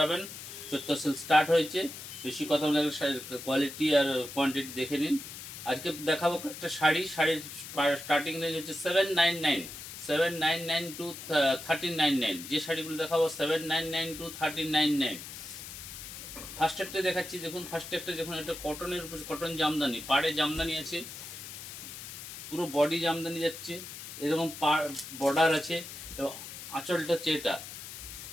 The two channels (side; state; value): left; noise; hiss, 11 dB below the sound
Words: 14 সেল স্টার্ট হয়েছে। বেশি কথা বলে কোয়ালিটি আর কোয়ান্টিটি দেখে নিন। আজকে দেখাবো একটা শাড়ির স্টার্টিং রেঞ্জ হচ্ছে 799, 799 টু 1399। যে শাড়িগুলো দেখাবো 799 টু 1399। ফার্স্ট একটা দেখাচ্ছি, দেখুন ফার্স্ট একটা দেখুন, এটা কটনের উপর কটন জামদানি, পাড়ে জামদানি আছে, পুরো বডি জামদানি যাচ্ছে, এরকম বর্ডার আছে এবং আঁচলটা হচ্ছে এটা,